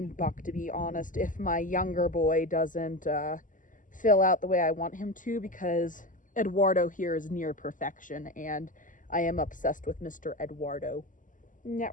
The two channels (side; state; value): right; late; 0.38 ms